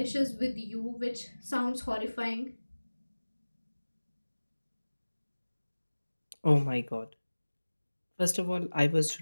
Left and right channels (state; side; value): inverted; both; correlation -1.00